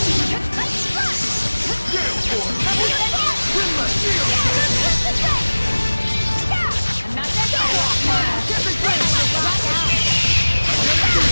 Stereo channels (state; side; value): inverted; both; correlation -1.00